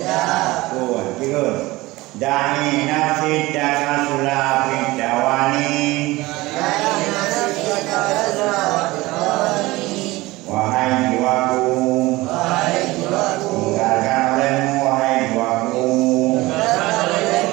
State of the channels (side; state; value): left; quieter; 20.1 dB